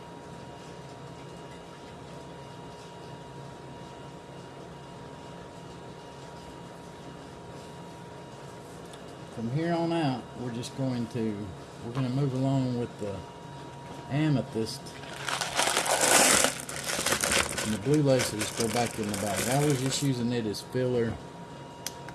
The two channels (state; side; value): identical; both; correlation 1.00